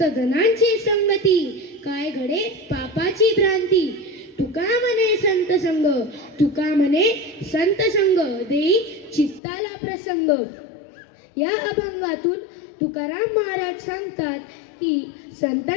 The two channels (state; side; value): drops out; right; at 9.4 s